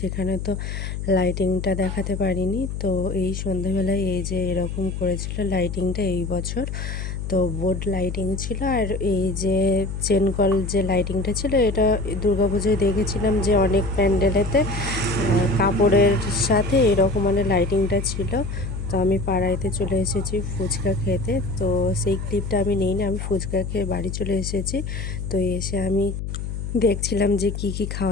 তো লাইটিংটা দেখাতে পারিনি। তো এই সন্ধ্যাবেলায় এই যে এরকম করেছিল লাইটিংটা এই বছর। তো বোর্ড লাইটিং ছিল, আর এই যে চেনকল যে লাইটিংটা ছিল এটা দুর্গাপুজোয় দেখেছিলাম যে অনেক প্যান্ডেলেতে কাপড়ের সাথে এরকম মানে লাইটিংটা ছিল। তো আমি পাড়াইতে চলে এসেছি ফুচকা খেতে। তো সেই ক্লিপটা আমি নিইনি, আমি ফুচকা খেয়ে বাড়ি চলে এসেছি। তো এসে আমি দেখছিলাম যে কি কি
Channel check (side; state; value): left; noise; hum, 5 dB below the sound